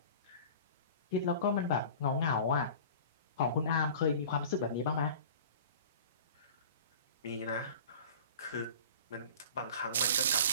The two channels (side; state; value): both; inverted; correlation -0.40